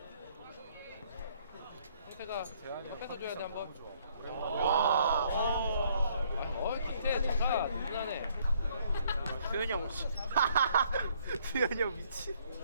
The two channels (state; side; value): inverted; both; correlation -0.65